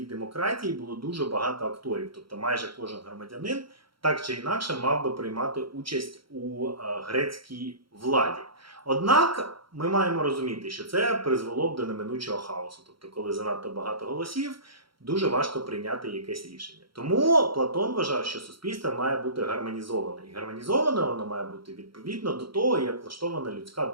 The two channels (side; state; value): left; late; 0.74 ms